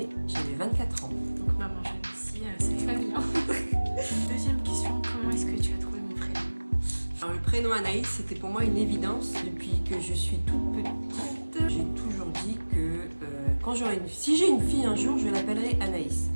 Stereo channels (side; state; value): both; inverted; correlation -1.00